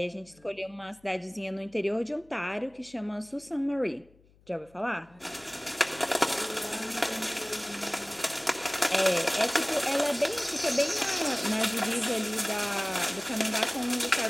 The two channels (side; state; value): left; noise; hum, 29 dB below the sound